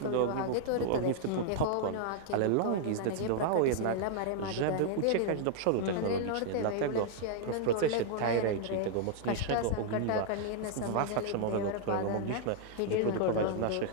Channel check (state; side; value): different; both; correlation -0.01